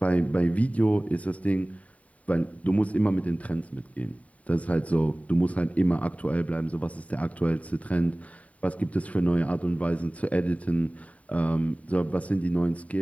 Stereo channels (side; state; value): right; late; 0.068 ms